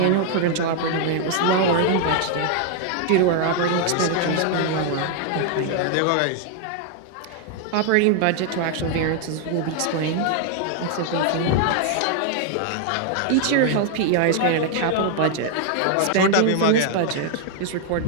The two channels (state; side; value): different; both; correlation 0.00